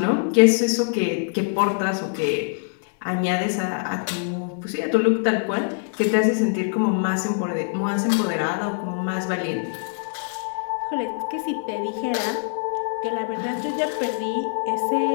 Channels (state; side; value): silent; right; digital silence